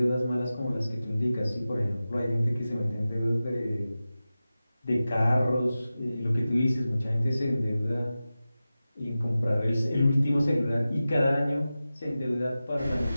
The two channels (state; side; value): inverted; both; correlation -0.95